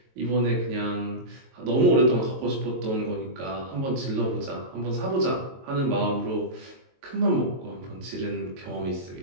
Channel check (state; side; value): late; left; 22 ms